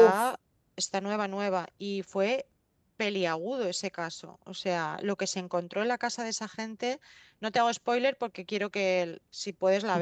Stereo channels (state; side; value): identical; both; correlation 1.00